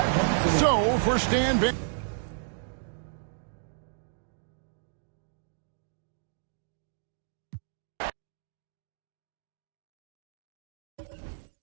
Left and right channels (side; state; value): left; silent; digital silence